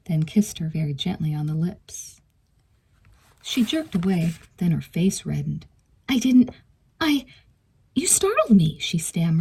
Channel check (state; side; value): identical; both; correlation 1.00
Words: then kissed her very gently on the lips. She jerked away, then her face reddened. You startled me," she